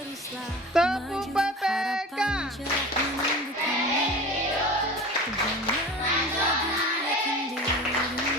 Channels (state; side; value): normal; both; correlation 0.36